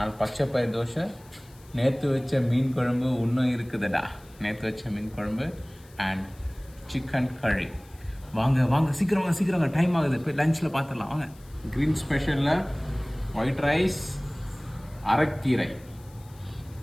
பச்சை பயிறு தோசை, நேற்று வச்ச மீன் குழம்பு இன்னும் இருக்குதுடா. நேற்று வச்ச மீன் குழம்பு அண்ட் சிக்கன் கறி. வாங்க வாங்க சீக்கிரம் வாங்க, சீக்கிரம் வாங்க, டைம் ஆகுது. போய் லஞ்சில் பார்த்துடலாம் வாங்க. க்ரீன் ஸ்பெஷலில் ஒயிட் ரைஸ், அரைக்கீரை.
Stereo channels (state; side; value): noise; left; hiss, 27 dB below the sound